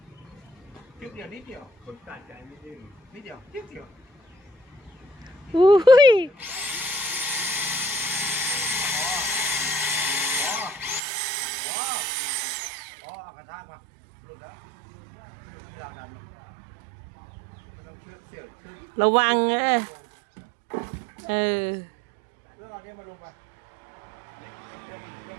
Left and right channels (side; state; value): left; drops out; at 11.0 s